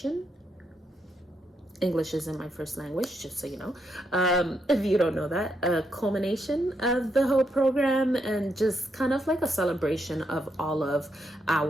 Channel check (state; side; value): normal; both; correlation 0.79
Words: English isn't my first language, just so you know. If you don't know that, a culmination of the whole program, and just kind of like a celebration of all of